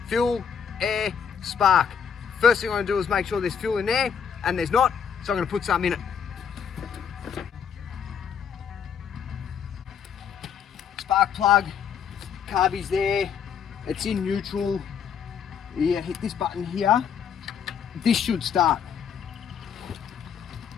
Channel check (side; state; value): right; quieter; 7.5 dB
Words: fuel, air, spark. First thing I'm going to do is make sure there's fuel in there, and there's not, so I'm going to put some in it. Spark plug, carby's there, it's in neutral. You hit this button here, this should start.